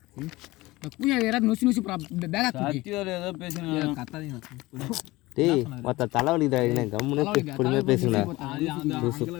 பூஜா யாராவது நொசி நொசி பேகா சத்தியார் ஏதோ பேசுங்க கத்தாதீங்க டேய் மொத்த தலைவலி தான் கம்முனே பொறுமையாக பேசுங்கடா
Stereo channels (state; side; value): quieter; right; 19.9 dB